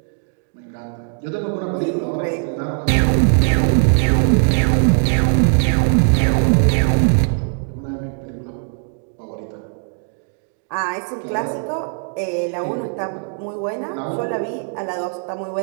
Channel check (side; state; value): left; silent; 55 dB below the other